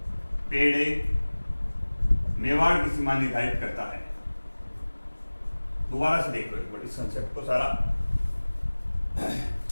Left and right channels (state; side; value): inverted; both; correlation -1.00